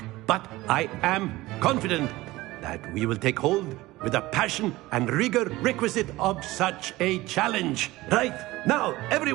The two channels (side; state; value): left; quieter; 18.8 dB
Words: But I am confident that we will take hold with the passion and rigor requisite of such a challenge. Right, now,